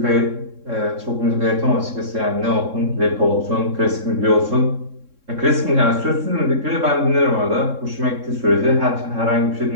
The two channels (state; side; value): late; left; 3.7 ms